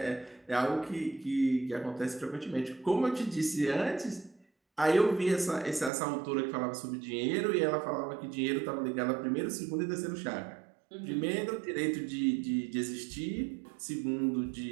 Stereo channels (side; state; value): left; drops out; at 5.9 s